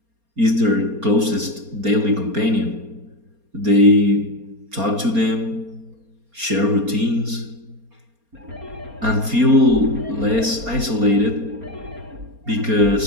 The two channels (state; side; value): late; left; 4.3 ms